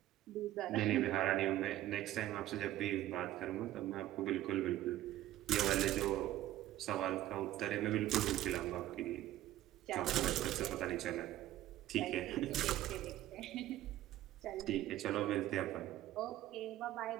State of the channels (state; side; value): quieter; left; 14.3 dB